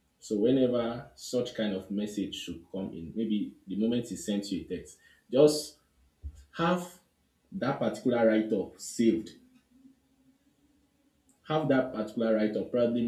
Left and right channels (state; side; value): identical; both; correlation 1.00